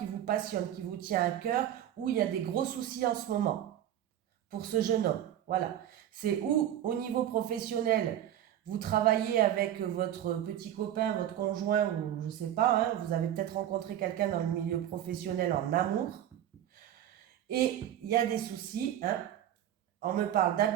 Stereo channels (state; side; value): quieter; left; 11.3 dB